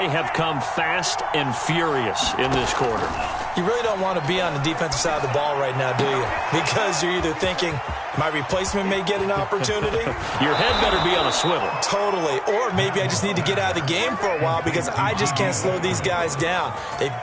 have come fast and furious in this quarter. You really don't want to be on the defensive side of the ball right now, do you? Because you're either thinking, my replacement may get an opportunity. Your head better be on a swivel. Totally. Or maybe I just need to get out of the game for a while because I just can't slow these guys down. They've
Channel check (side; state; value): both; identical; correlation 1.00